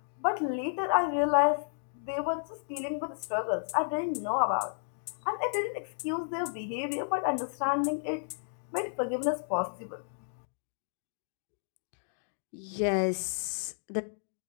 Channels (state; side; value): silent; right; digital silence